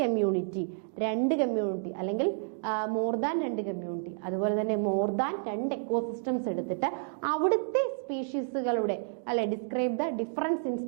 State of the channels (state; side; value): silent; left; digital silence